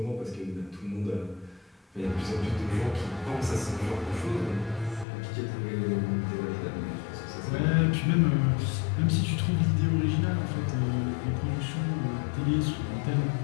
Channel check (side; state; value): right; drops out; at 5.1 s